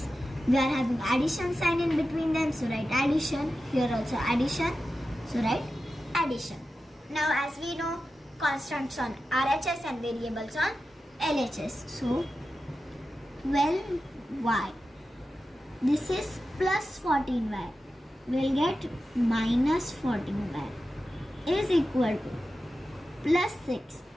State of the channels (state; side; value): normal; both; correlation 0.92